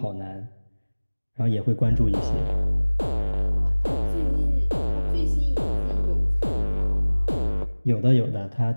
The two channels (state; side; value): inverted; both; correlation -1.00